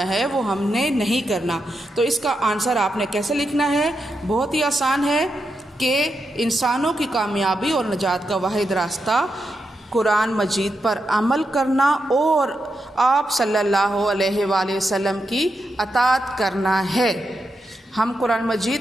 ہے وہ ہم نے نہیں کرنا۔ تو اس کا آنسر آپ نے کیسے لکھنا ہے؟ بہت ہی آسان ہے کہ انسانوں کی کامیابی اور نجات کا واحد راستہ قرآن مجید پر عمل کرنا اور آپ صلی اللہ علیہ وآلہ وسلم کی اطاعت کرنا ہے۔ ہم قرآن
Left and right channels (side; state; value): both; normal; correlation 0.85